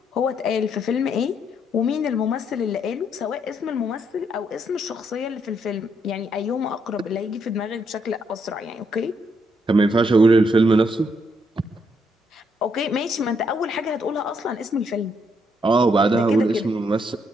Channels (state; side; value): normal; both; correlation 0.75